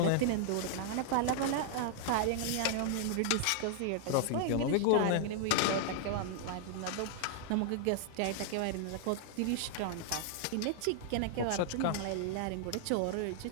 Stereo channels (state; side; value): different; both; correlation -0.01